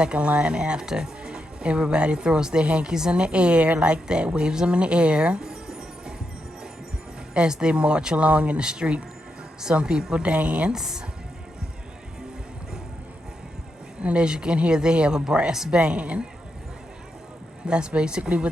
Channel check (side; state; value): both; normal; correlation 0.84